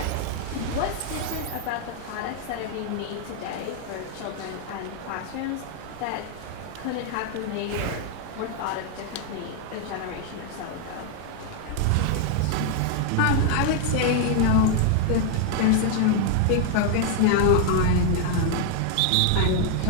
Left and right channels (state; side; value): different; both; correlation 0.00